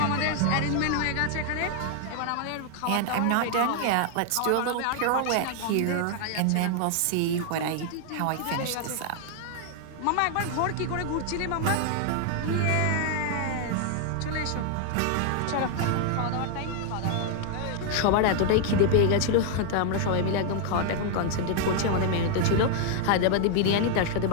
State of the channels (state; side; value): different; both; correlation 0.00